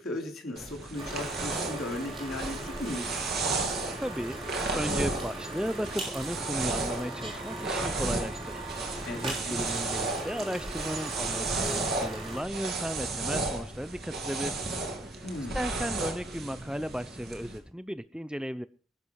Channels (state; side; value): normal; both; correlation 0.64